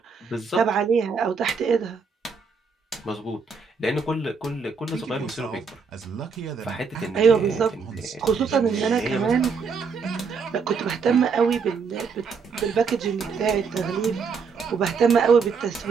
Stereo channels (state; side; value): quieter; left; 5.4 dB